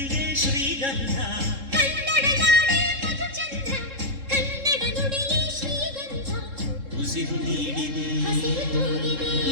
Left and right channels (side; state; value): left; late; 3.7 ms